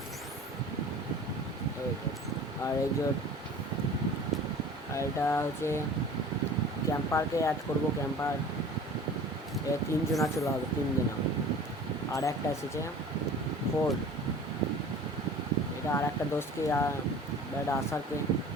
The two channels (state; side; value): normal; both; correlation 0.42